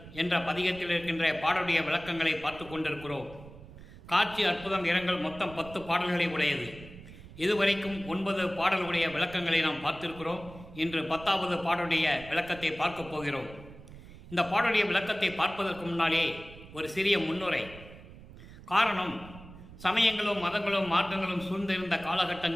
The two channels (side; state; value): right; noise; rumble, 17 dB below the sound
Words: என்ற பதிகத்தில் இருக்கின்ற பாடலுடைய விளக்கங்களை பார்த்து கொண்டிருக்கிறோம். காட்சி அற்புதம் இரங்கல் மொத்தம் 10 பாடல்களை உடையது. இதுவரைக்கும் 9 பாடலுடைய விளக்கங்களை நாம் பார்த்திருக்கிறோம். இன்று 10வது பாடலுடைய விளக்கத்தை பார்க்க போகிறோம். இந்த பாடலுடைய விளக்கத்தை பார்ப்பதற்கு முன்னாலே ஒரு சிறிய முன்னுரை. காரணம், சமயங்களும் மதங்களும் மார்க்கங்களும் சூழ்ந்திருந்த